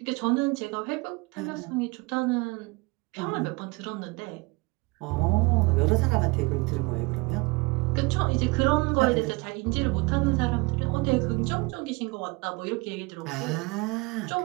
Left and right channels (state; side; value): quieter; left; 26.3 dB